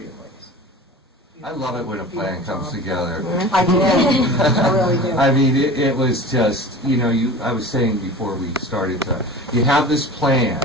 ways. I love it when a plan comes together. I did. I really did. I mean, it was just, I was saying before we started you have this plan,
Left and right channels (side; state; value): both; normal; correlation 0.37